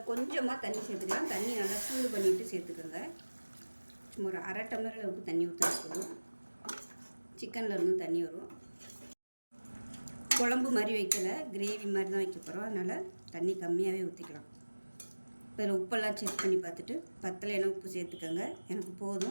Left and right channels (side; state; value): both; inverted; correlation -1.00